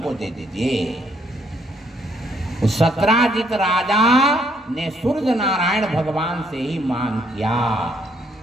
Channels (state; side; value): normal; both; correlation 0.70